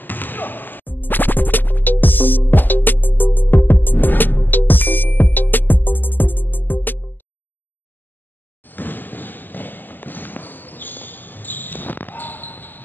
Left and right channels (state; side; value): late; right; 0.088 ms